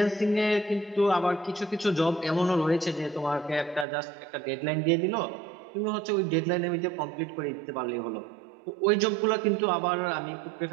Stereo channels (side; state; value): left; drops out; at 3.9 s